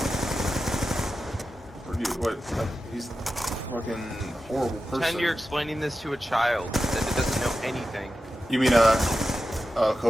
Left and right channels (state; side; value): normal; both; correlation 0.92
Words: What? He's a fucking horrible person. Pretend you're explaining this to a child that doesn't know anything. You mean a